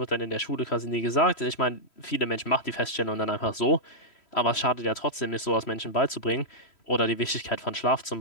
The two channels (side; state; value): right; late; 3.1 ms